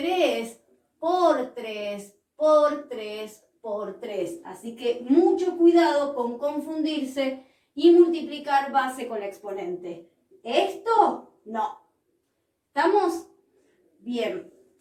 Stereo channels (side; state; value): both; identical; correlation 1.00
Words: por 3 por 3 por 3. Así que mucho cuidado con confundirse y multiplicar base con exponente. Esto no. ¿Estamos? Bien.